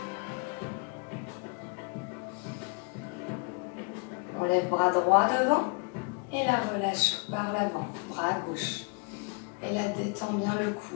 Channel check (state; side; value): quieter; right; 33.2 dB